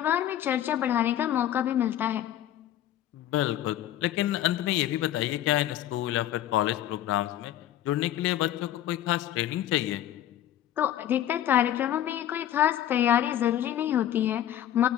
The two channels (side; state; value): right; quieter; 11.9 dB